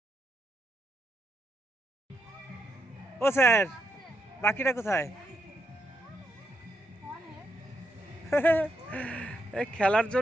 ও স্যার, বাকিটা কোথায়? খেলার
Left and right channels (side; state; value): both; normal; correlation 0.81